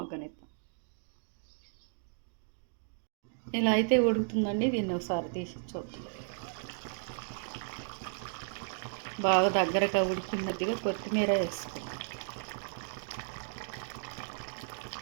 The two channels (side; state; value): left; silent; digital silence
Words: ఇలా అయితే ఉడుకుతుందండి. దీన్ని ఒకసారి తీసి చూద్దాం. బాగా దగ్గరగా ఉడికినట్టుగా కొత్తిమీర వేసుకుందాం.